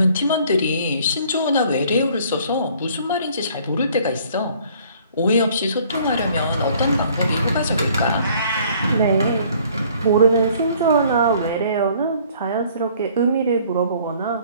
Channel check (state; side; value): inverted; both; correlation -0.57